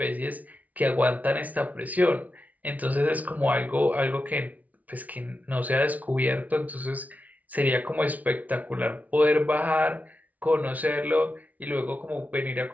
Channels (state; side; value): late; left; 0.073 ms